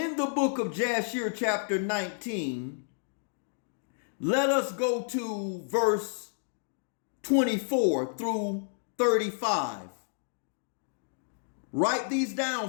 the book of Jashir, chapter 19, let us go to verse 24 through 35. Write these down,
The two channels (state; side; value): silent; right; digital silence